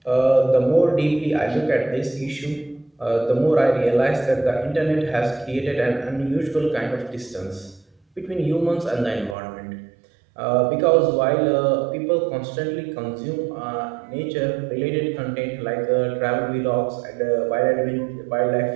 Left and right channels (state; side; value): drops out; left; at 9.3 s